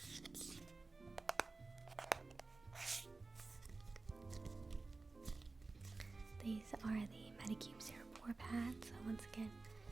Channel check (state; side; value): quieter; left; 3.7 dB